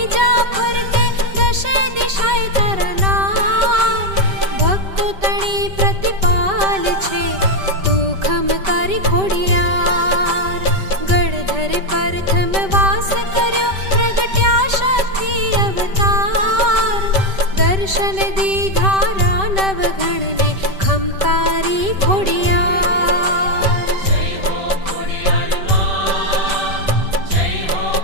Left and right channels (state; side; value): late; left; 5.1 ms